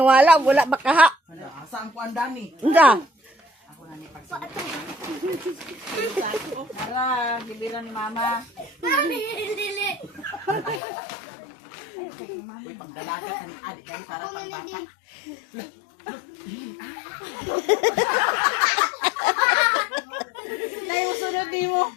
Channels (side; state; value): right; drops out; at 10.8 s